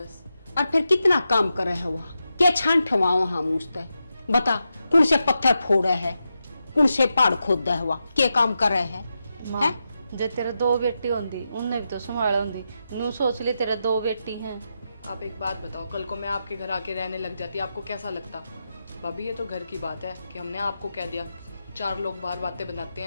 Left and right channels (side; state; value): both; inverted; correlation -0.88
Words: और फिर कितना काम कर रहे हुआ, क्या छान ठवाओ हम उसते, बता कौन से पत्थर फोड़े है, कौन से पहाड़ खोद हुआ, क्या काम कर रहे हैं? जे तेरे दो बेटी होंगी उनने भी तो संभाला होंगी, नू सोच ले तेरे दो बेटी हैं। आप एक बात बताओ, कल को मैं आपके घर आके रहने लग जाती, आपको कैसा लगता? भाभी ये तो घर की बात है कि हमने आपको कह दिया, 4 लोग बाहर बातें बनाते